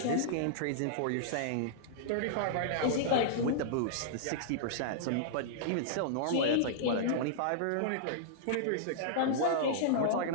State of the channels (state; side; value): different; both; correlation -0.02